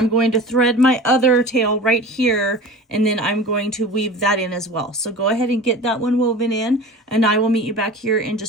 going to thread my other tail right here, and then I'm going to weave that in as well. So go ahead and get that one woven in, and I will meet you back here in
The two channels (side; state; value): both; normal; correlation 0.36